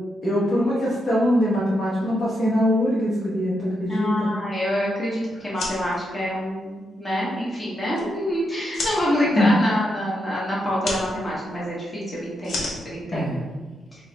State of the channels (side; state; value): both; normal; correlation 0.82